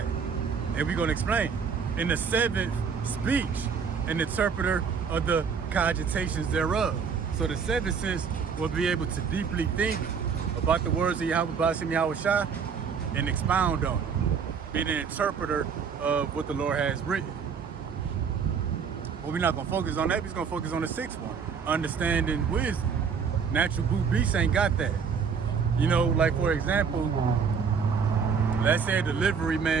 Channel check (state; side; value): quieter; left; 6.2 dB